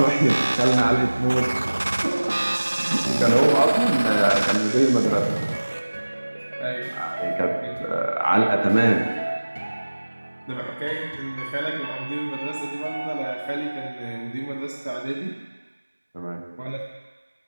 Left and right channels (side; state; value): both; inverted; correlation -1.00